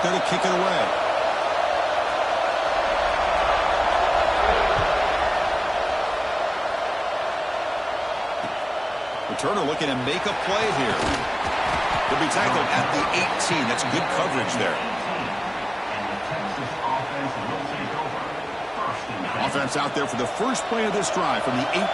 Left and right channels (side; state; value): both; identical; correlation 1.00